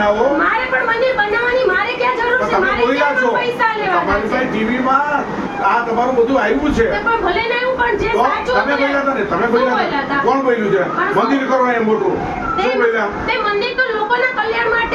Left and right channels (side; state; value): both; identical; correlation 1.00